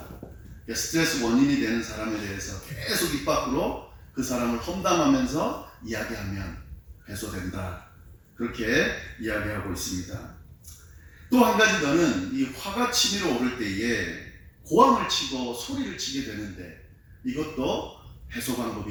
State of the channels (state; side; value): identical; both; correlation 1.00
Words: 스트레스 원인이 되는 사람에 대해서 계속 입 밖으로 그 사람을 험담하면서 이야기하면 해소된다. 그렇게 이야기하고 있습니다. 또 한 가지 더는 이 화가 치밀어 오를 때에 고함을 치고 소리를 치게 되는데 이것도 해소